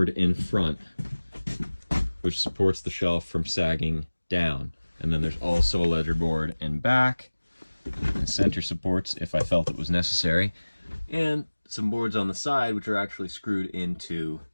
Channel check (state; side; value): inverted; both; correlation -1.00